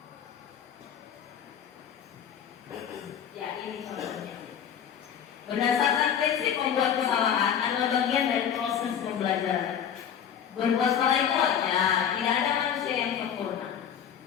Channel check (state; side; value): quieter; right; 8.7 dB